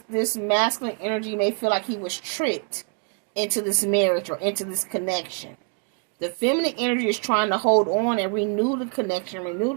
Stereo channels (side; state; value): left; quieter; 37.6 dB